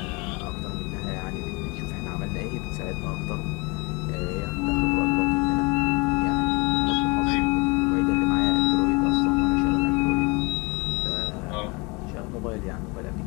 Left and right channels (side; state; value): right; quieter; 27.9 dB